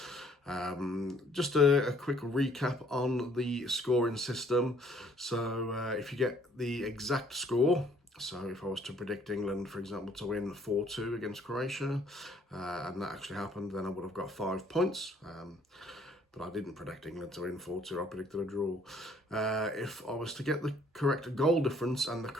Just a quick recap on the scoring system. So if you get the exact score, so if I was to predict England, for example, to win 4-2 against Croatia, and that actually happened, then I would have got 5 points. But I didn't predict England to win 4-2, I predicted a draw. If I was to get the correct goal difference and the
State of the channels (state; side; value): normal; both; correlation 0.61